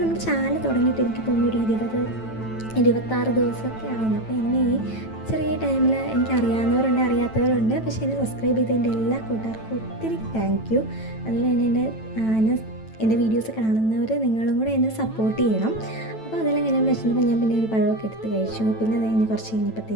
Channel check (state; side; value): late; right; 9.1 ms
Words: നമ്മുടെ ചാനൽ തുടങ്ങിയിട്ട് എനിക്ക് തോന്നുന്നു ഒരു 26 ദിവസമൊക്കെ ആവുന്നു. അപ്പോൾ എന്നെ ഈ ചെറിയ ടൈമിൽ എനിക്ക് അറിയാവുന്നവരുണ്ട്, അറിയാത്തവരുണ്ട്. പക്ഷേ എന്നെ സബ്സ്ക്രൈബ് ചെയ്തതിൻ്റെ എല്ലാ കൂട്ടുകാർക്കും ഒത്തിരി താങ്ക് യു. അതുപോലെ തന്നെ എൻ്റെ വീഡിയോസ് കാണുന്നവർ നിങ്ങളും കൂടെ എന്നെ സപ്പോർട്ട് ചെയ്യണം. അപ്പോൾ അതെല്ലാം കഴിഞ്ഞ് വെച്ചിട്ടുമ്പോൾ ഞാൻ പിന്നെ ഒരു പഴമൊക്കെ എടുത്ത് കഴിച്ചു. പിന്നെ അത് കഴിഞ്ഞ് കുറച്ച്